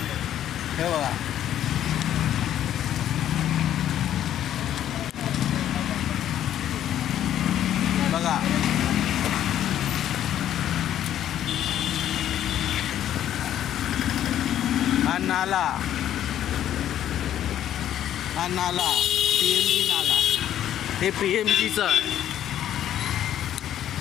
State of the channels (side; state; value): right; quieter; 11.2 dB